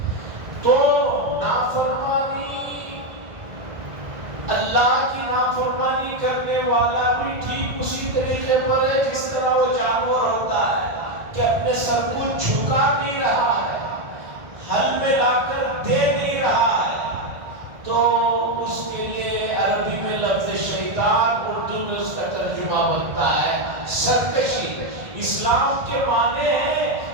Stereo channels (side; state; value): left; late; 1.6 ms